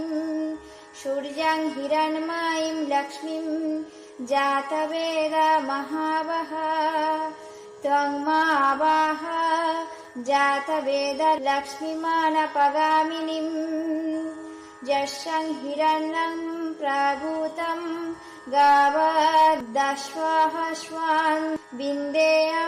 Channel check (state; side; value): identical; both; correlation 1.00